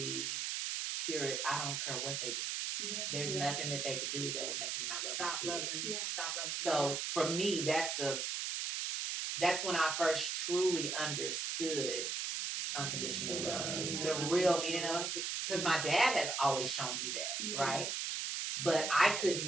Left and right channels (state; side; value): noise; right; hiss, 1 dB below the sound